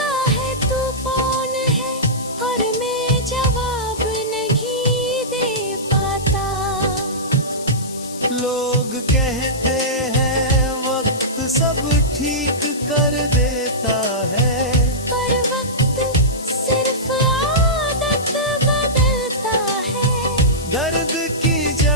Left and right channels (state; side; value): noise; left; hiss, 14 dB below the sound